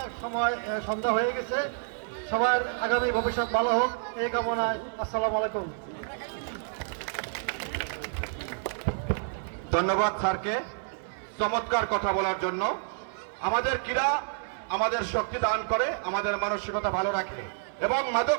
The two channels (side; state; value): left; silent; digital silence